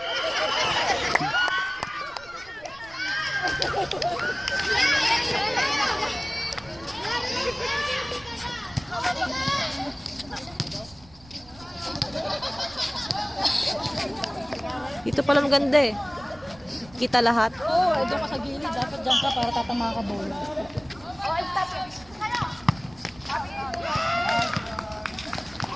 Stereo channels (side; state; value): right; noise; rumble, 23 dB below the sound